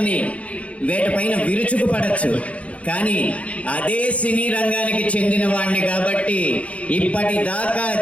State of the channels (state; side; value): late; right; 0.064 ms